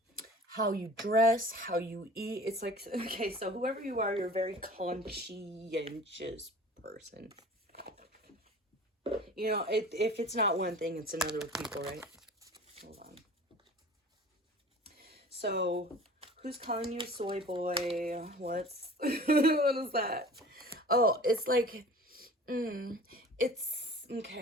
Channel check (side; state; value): both; normal; correlation 0.43